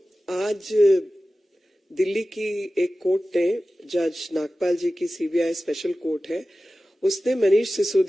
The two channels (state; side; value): normal; both; correlation 0.95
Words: आज दिल्ली की एक कोर्ट ने, जज नागपाल जी की सीबीआई स्पेशल कोर्ट है, उसने मनीष